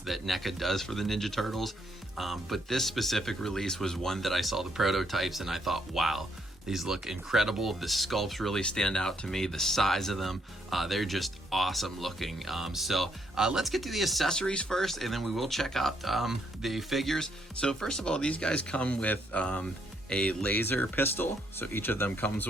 that NECA does for the Ninja Turtles, but this specific release was one that I saw the prototypes and I thought, wow, these look incredible. The sculpts really stand out to me. The size of them, they're just awesome looking. So let's get to the accessories first, and then we will check out the figures. So first of all, these guys come with a laser pistol. So each of them comes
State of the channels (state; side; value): normal; both; correlation 0.73